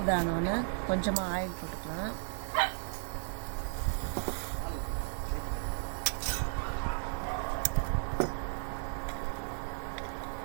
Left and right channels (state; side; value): silent; left; digital silence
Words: கொஞ்சமாக ஆயில் போட்டுக்கலாம்.